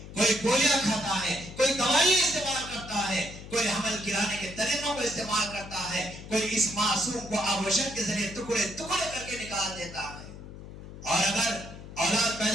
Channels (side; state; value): left; noise; hum, 14 dB below the sound